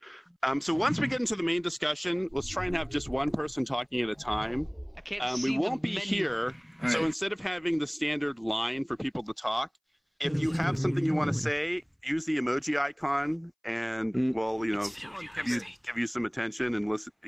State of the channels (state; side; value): identical; both; correlation 1.00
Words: So once we get into the main discussion, let's try and have just one person talking at a time. I can't We see won't the be menu. here, so instead of having the standard line for people to talk, if you have something you want to say, use the emoji icon, and we'll, give you some attention and listen,